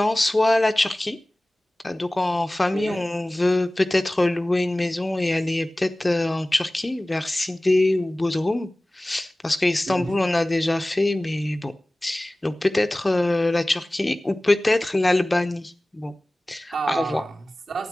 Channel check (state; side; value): normal; both; correlation 0.98